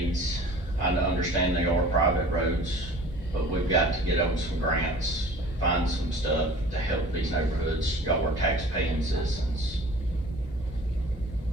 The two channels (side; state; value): both; normal; correlation 0.45